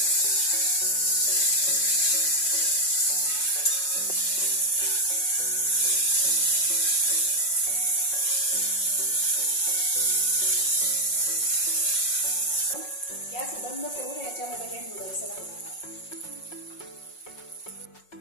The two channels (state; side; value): late; right; 5.5 ms